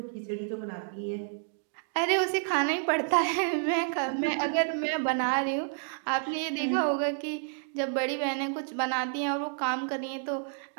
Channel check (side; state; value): left; silent; 57 dB below the other